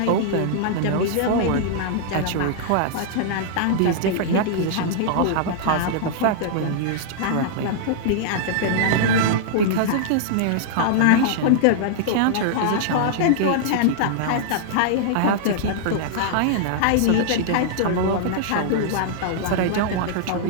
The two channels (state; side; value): different; both; correlation -0.01